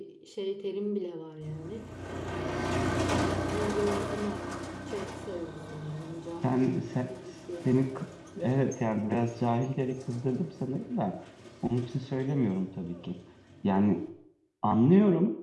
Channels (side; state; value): both; identical; correlation 1.00